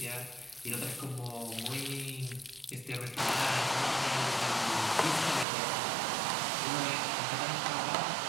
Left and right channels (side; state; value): left; drops out; at 5.5 s